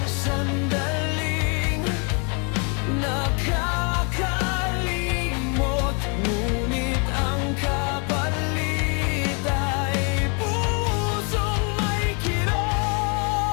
sandaling nakakalimot, ngunit ang kapalit ay pusong may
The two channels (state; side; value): quieter; right; 36.3 dB